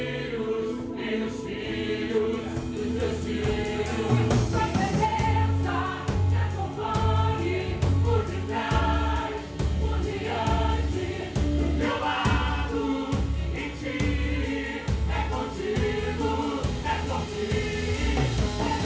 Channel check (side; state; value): both; identical; correlation 1.00